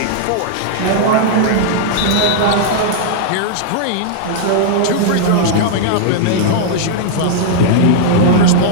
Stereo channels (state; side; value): different; both; correlation -0.01